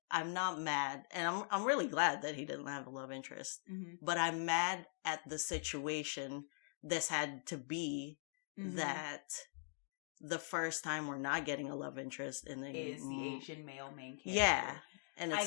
I'm not mad, and I'm really glad that he didn't have a love interest. Mm-hmm. But I'm mad at the situation this had to be, that the first time we're not getting a love interest in is the Asian male main character. Yeah. And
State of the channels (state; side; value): silent; right; digital silence